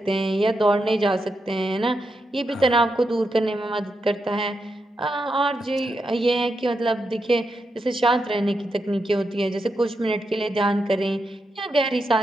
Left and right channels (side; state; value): both; normal; correlation 0.85